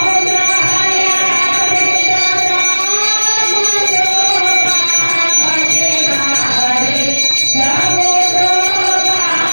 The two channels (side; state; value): both; inverted; correlation -1.00